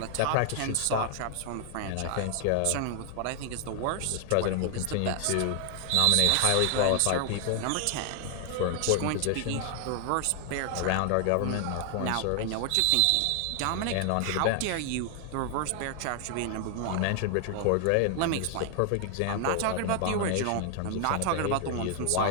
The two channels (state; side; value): different; both; correlation 0.00